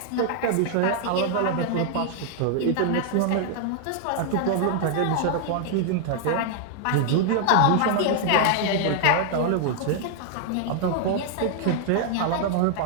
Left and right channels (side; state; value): both; different; correlation 0.00